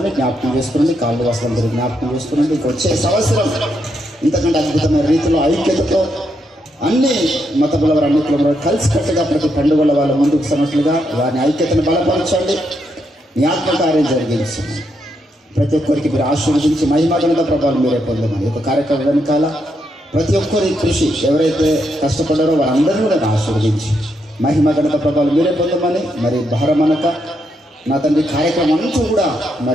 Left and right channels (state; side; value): normal; both; correlation 0.80